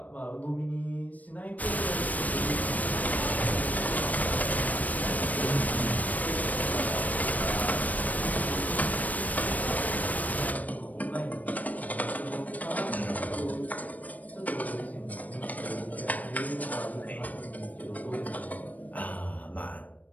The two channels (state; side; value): late; right; 0.074 ms